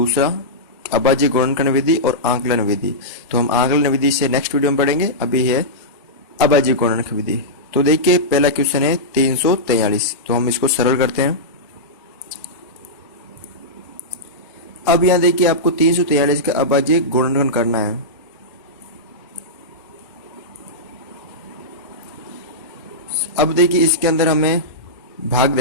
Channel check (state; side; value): normal; both; correlation -0.12